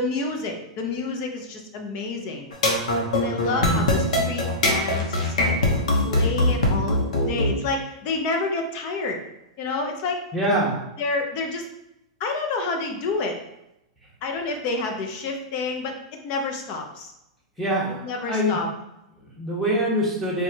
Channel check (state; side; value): normal; both; correlation -0.15